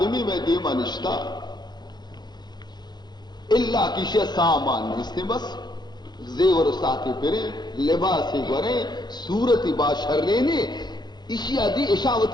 میں دیما نشتا اللہ کشے سامان اس نے بس زیور ساتھی پھرے لباسی گورے صورتی باشرنے اسی آدھی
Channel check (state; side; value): late; right; 0.21 ms